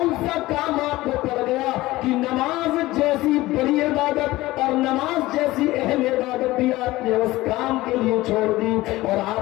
سا کام آپ کو پڑ گیا کہ نماز جیسی بڑی عبادت اور نماز جیسی اہم عبادت بھی آپ نے اس کام کے لیے چھوڑ دی اور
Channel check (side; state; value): right; quieter; 18.2 dB